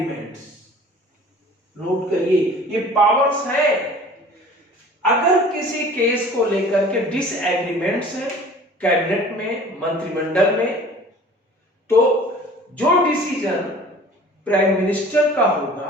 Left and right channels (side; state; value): both; normal; correlation 0.46